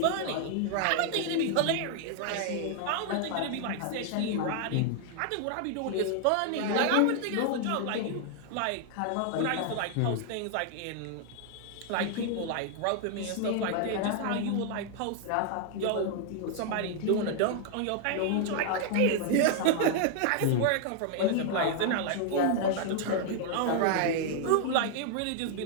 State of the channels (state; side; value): different; both; correlation 0.00